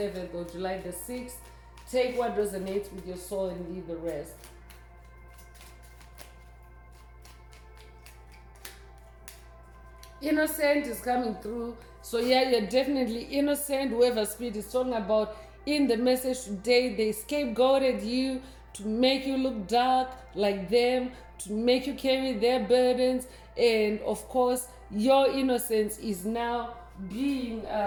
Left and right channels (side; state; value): both; identical; correlation 1.00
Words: or July the 6th. Take what resonates with your soul and leave the rest. Innocent is coming through. So yeah, you're definitely innocent. Whoever spirit is talking about in the message today, they scapegoated you to make you look dark like them, to make you carry their burdens, and of course your innocence is now being